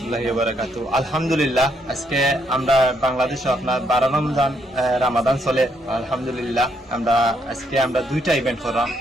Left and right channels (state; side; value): normal; both; correlation 0.74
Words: ওয়া বারাকাতুহু। আলহামদুলিল্লাহ, আজকে আমরা বাংলাদেশে আপনার 12 রামাদান চলে। আলহামদুলিল্লাহ, আমরা দুইটা ইভেন্ট করলাম।